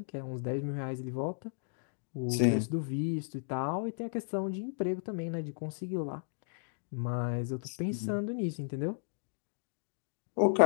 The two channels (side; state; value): right; silent; digital silence